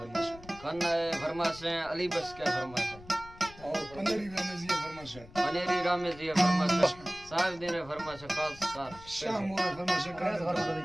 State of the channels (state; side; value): noise; left; rumble, 19 dB below the sound